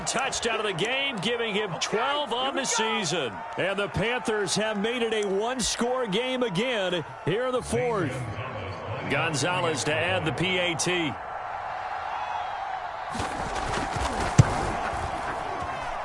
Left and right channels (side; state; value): both; identical; correlation 1.00